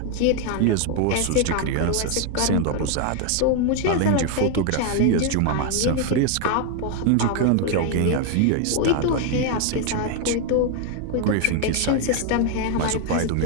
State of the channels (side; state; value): both; different; correlation 0.01